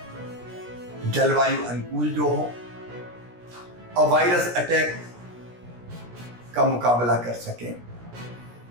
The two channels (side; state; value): left; late; 17 ms